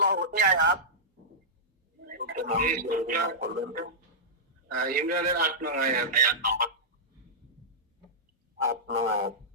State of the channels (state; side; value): normal; both; correlation -0.13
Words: ইমরানের 8 নং আয়াত।